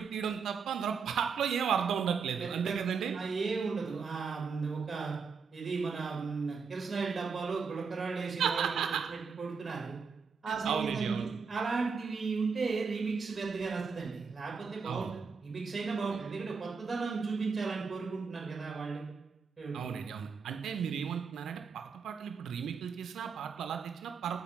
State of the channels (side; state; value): left; quieter; 5.5 dB